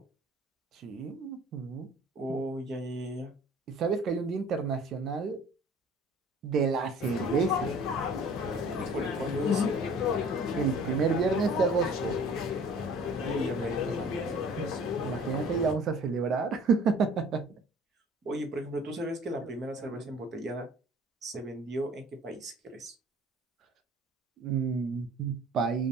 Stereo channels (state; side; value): normal; both; correlation 0.49